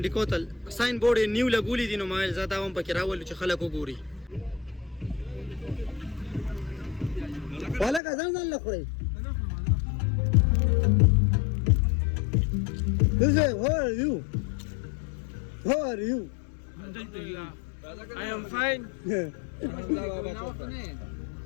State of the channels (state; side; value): drops out; right; at 8.0 s